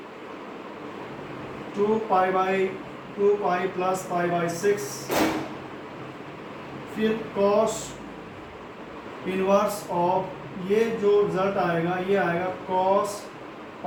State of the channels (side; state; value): both; identical; correlation 1.00